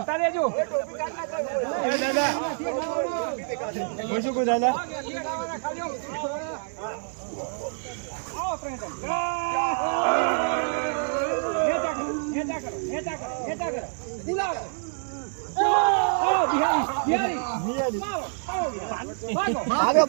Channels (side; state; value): left; silent; 60 dB below the other